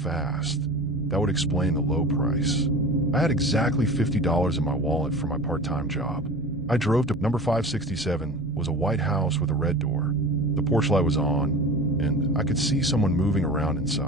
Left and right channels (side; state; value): both; normal; correlation 0.35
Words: that would explain the low price. I had exactly $50 in my wallet for my part-time job. I drove to number 567, was a white house with a red door. The porch light was on, and I could see someone moving around